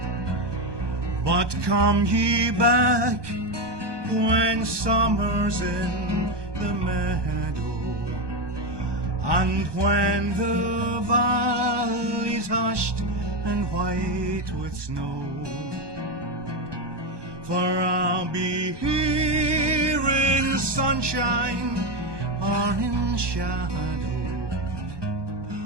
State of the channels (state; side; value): late; left; 1.2 ms